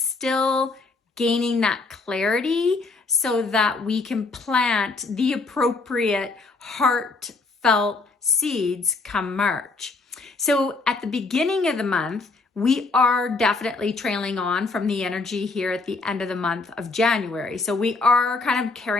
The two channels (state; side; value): quieter; right; 3.8 dB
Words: gaining that clarity so that we can plant the appropriate heartfelt seeds come March. So at the beginning of the month, we are definitely trailing on from the energy here at the end of the month of January. So we are kind of